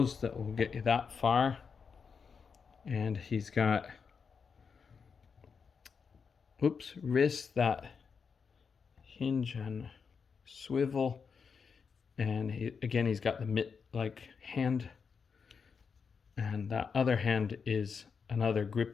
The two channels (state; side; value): quieter; right; 5.8 dB